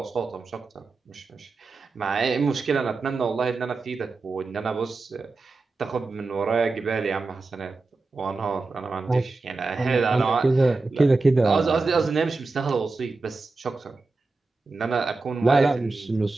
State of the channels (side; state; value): left; quieter; 3.7 dB